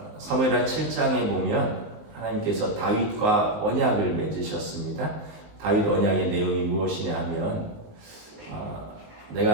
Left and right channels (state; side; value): late; left; 19 ms